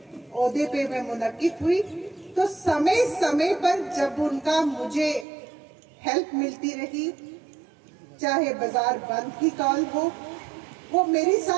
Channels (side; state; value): left; drops out; at 5.2 s